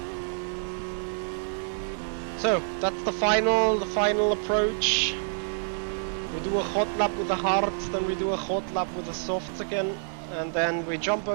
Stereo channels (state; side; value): silent; left; 60 dB below the other